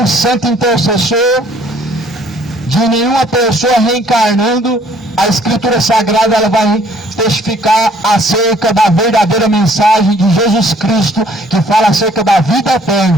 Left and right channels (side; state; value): both; normal; correlation 0.60